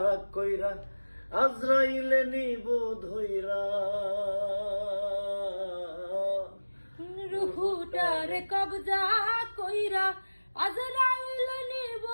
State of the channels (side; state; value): both; inverted; correlation -1.00